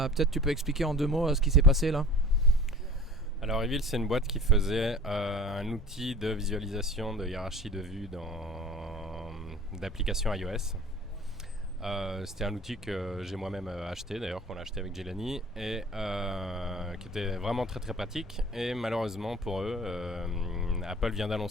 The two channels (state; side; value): normal; both; correlation 0.44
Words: tu peux expliquer en 2 mots ce qui s'est passé là. Alors Reveal, c'est une boîte qui faisait un outil de visualisation de hiérarchie de vue d'applications iOS. C'était un outil que j'ai moi-même acheté, d'ailleurs qu'on a acheté avec Jelani, et qui était vraiment très très pratique. Et malheureusement pour eux, Apple vient